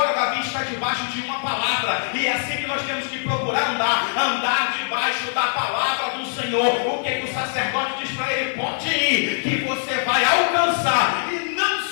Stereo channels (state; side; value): silent; right; digital silence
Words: Davi está debaixo de uma palavra, e é assim que nós temos que procurar andar debaixo da palavra do Senhor. O que o sacerdote diz para ele? Pode ir, que você vai alcançar, e não